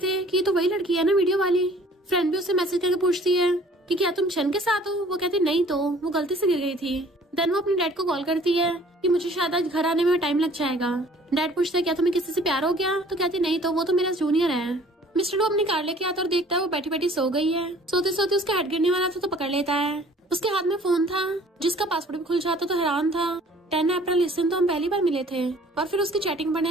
कि ये तो वही लड़की है ना वीडियो वाली। फ्रेंड भी उसे मैसेज करके पूछती है कि क्या तुम चैन के साथ हो? वो कहती नहीं तो वो गलती से गिर गई थी। देन वो अपने डैड को कॉल करती है कि मुझे शायद आज घर आने में टाइम लग जाएगा। डैड पूछता है क्या तुम्हें किसी से प्यार हो गया? तो कहती नहीं तो वो तो मेरा जूनियर है। मिस्टर लू अपनी कार लेके आता और देखता है वो बैठी बैठी सो गई है। सोते सोते उसका हेड गिरने वाला था तो पकड़ लेता है। उसके हाथ में फोन था जिसका पासवर्ड भी खुल जाता तो हैरान था। 10 अप्रैल इस दिन तो हम पहली बार मिले थे। और फिर उसकी चैटिंग पढ़ने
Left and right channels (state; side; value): normal; both; correlation 0.53